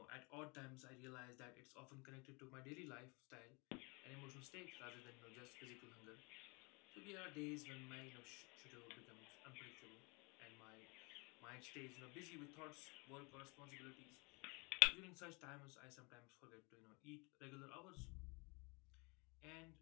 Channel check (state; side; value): quieter; right; 29.3 dB